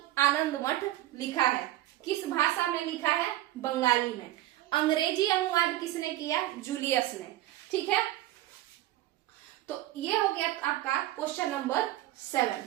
आनंद मठ लिखा है। किस भाषा में लिखा है? बंगाली में। अंग्रेजी अनुवाद किसने किया? जूलियस ने, ठीक है। तो ये हो गया आपका क्वेश्चन नंबर 7।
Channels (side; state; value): left; quieter; 15.1 dB